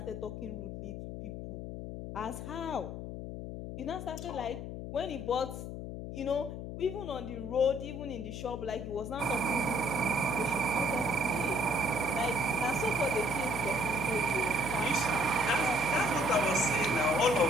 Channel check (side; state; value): left; noise; hum, 7 dB below the sound